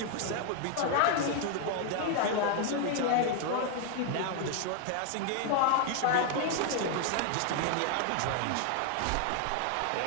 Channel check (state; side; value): different; both; correlation 0.00